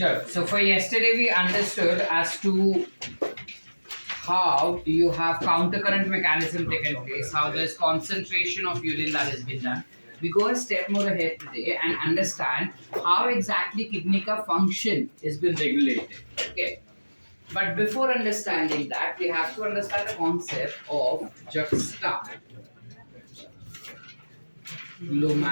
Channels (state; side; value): inverted; both; correlation -1.00